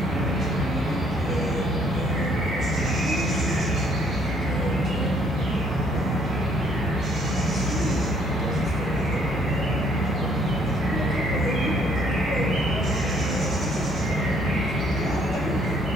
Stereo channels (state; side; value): normal; both; correlation 0.63